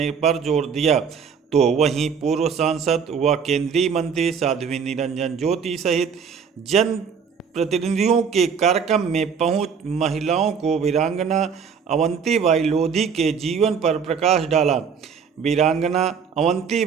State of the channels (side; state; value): left; quieter; 6.5 dB